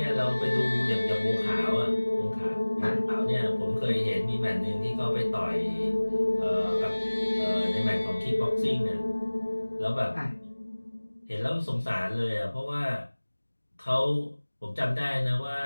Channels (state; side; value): inverted; both; correlation -1.00